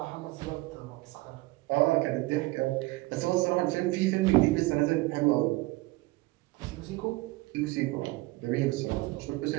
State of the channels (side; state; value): left; quieter; 21.0 dB